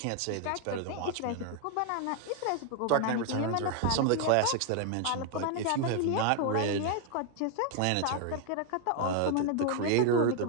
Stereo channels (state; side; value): different; both; correlation 0.00